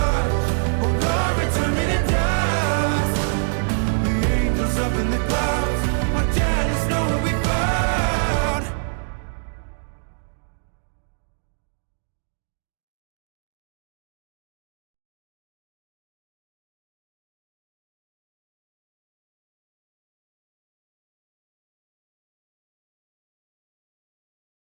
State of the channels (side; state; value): left; silent; digital silence